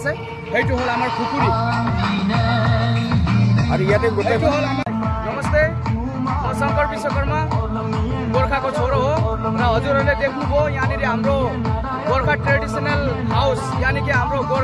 সেইটো হল आमार खुकुरी और ইয়াতে গোটে হল आमार। नमस्ते, शंकर विश्वकर्मा गोरखा को छोरो हो र हजुरहरुले देख्नुभयो यहाँनिर हाम्रो गोरखा ट्रेडिशनल हाउस यानी कि हाम्रो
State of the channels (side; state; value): both; identical; correlation 1.00